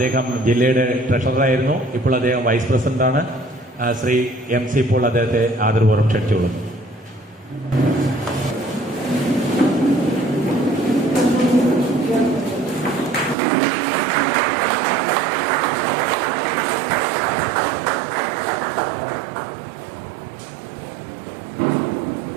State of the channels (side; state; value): left; drops out; at 13.4 s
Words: ജില്ലയുടെ ട്രഷററായിരുന്നു, ഇപ്പോൾ അദ്ദേഹം വൈസ് പ്രസിഡന്റാണ്, ശ്രീ MC പോൾ അദ്ദേഹത്തെ ആദരപൂർവ്വം ക്ഷണിച്ചോളും.